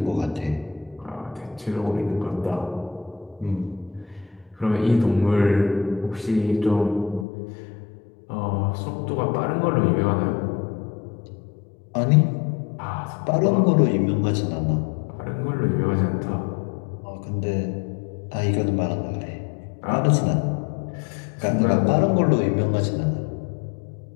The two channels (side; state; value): right; drops out; at 7.2 s